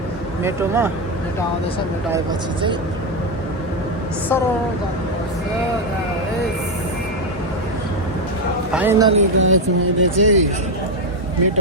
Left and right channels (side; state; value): both; normal; correlation 0.06